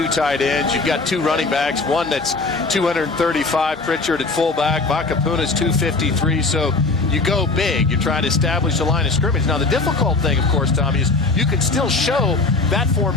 tight ends. You've got 2 running backs, one that's 235, Pritchard at fullback. Vakapuna's 253, so you go big. You're trying to establish a line of scrimmage. Now, the difficult thing, of course, Tommy, is you can still show that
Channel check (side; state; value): right; quieter; 3.6 dB